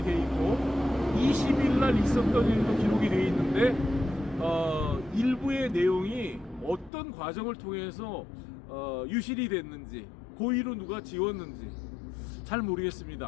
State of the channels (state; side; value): drops out; right; at 6.9 s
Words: 돼 있고 20일 날 있었던 일도 기록이 돼 있는데 일부의 내용이 어떤 과정을 통해서 유실이 됐는지 고의로 누가 지웠는지 잘